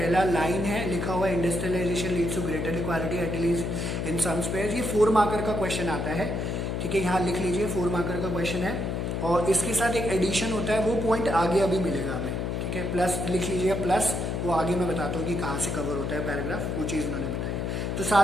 लाइन है लिखा हुआ है, industrialization leads to greater equality at least in some spheres. ये 4 मार्कर का क्वेश्चन आता है, ठीक है, यहाँ लिख लीजिए 4 मार्कर का क्वेश्चन है। और इसके साथ एक एडिशन होता है, वो पॉइंट आगे अभी मिलेगा हमें, ठीक है। प्लस लिख लीजिए प्लस, वो आगे मैं बताता हूँ कि कहाँ से कवर होता है पैराग्राफ, वो चीज़ उन्होंने बताई। तो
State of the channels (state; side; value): noise; left; hum, 1 dB below the sound